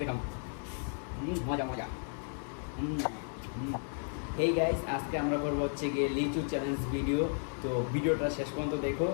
দেখাম। মজা মজা। হেই গাইস, আজকে আমরা করবো হচ্ছে গিয়ে লিচু চ্যালেঞ্জ ভিডিও। তো ভিডিওটা শেষ পর্যন্ত দেখো,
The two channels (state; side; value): silent; right; 55 dB below the other